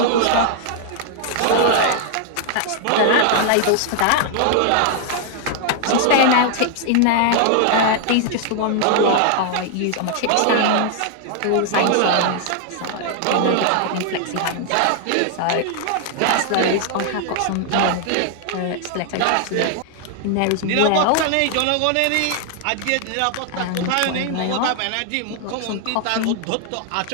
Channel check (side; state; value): both; different; correlation 0.00